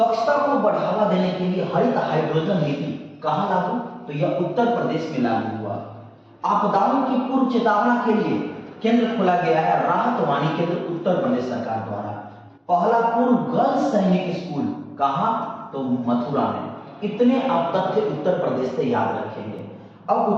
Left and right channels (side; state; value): both; identical; correlation 1.00